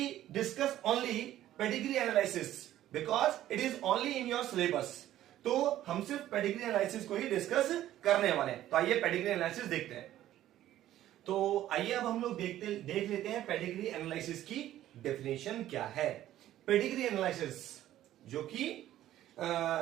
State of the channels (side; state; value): left; quieter; 13.2 dB